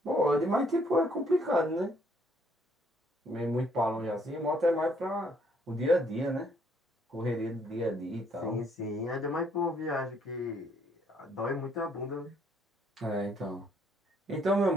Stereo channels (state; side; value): normal; both; correlation 0.67